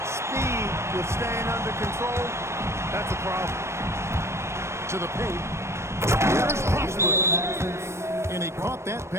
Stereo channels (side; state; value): left; late; 0.13 ms